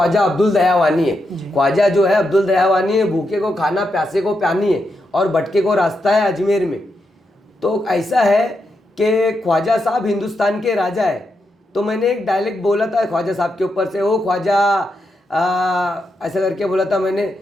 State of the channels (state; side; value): normal; both; correlation 0.84